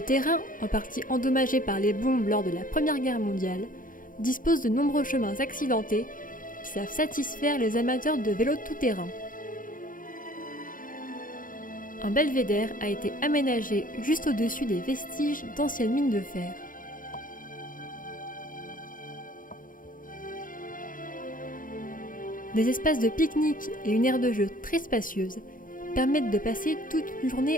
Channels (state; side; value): late; right; 0.40 ms